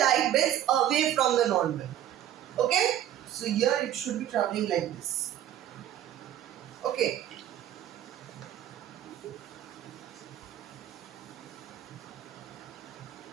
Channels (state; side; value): quieter; left; 11.6 dB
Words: bends away from the normal. Okay? So here it should be traveling like this. Okay.